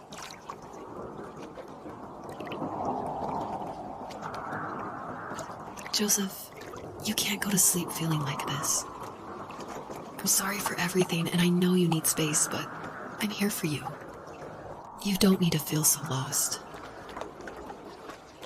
Joseph, you can't go to sleep feeling like this. I'm sorry for everything, and I know you need space, but I'm here for you. You don't need to feel so lost.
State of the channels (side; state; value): both; identical; correlation 1.00